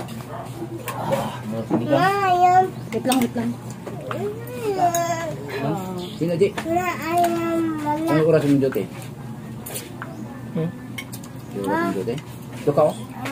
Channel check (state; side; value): identical; both; correlation 1.00